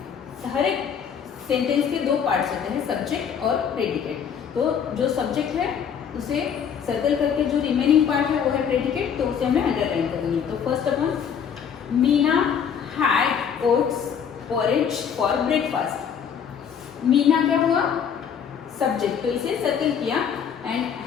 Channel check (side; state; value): right; quieter; 7.6 dB